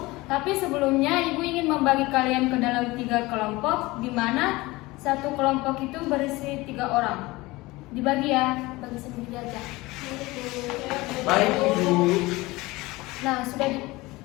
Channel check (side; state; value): right; quieter; 21.1 dB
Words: Tapi sebelumnya Ibu ingin membagi kalian ke dalam 3 kelompok, di mana satu kelompok itu berisi 3 orang. Dibagi ya, bagi sendiri aja. Baik Ibu.